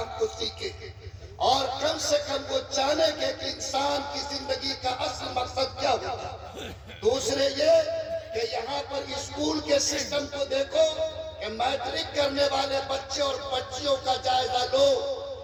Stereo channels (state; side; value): identical; both; correlation 1.00